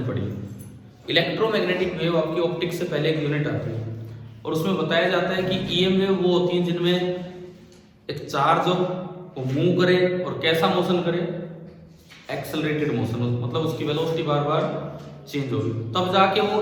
पढ़ी। इलेक्ट्रोमैग्नेटिक वेव आपकी ऑप्टिक्स से पहले एक यूनिट आती है और उसमें बताया जाता है कि ईएम वेव वो होती है जिनमें एक चार्ज हो, वो मूव करे और कैसा मोशन करे, एक्सेलरेटेड मोशन, मतलब उसकी वेलोसिटी बार बार चेंज होगी, तब जाके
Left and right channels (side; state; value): both; identical; correlation 1.00